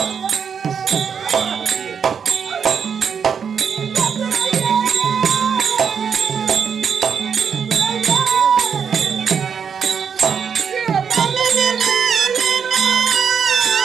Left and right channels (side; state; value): left; quieter; 6.9 dB